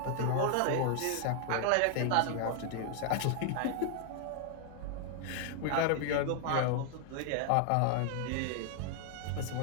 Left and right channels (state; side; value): different; both; correlation 0.00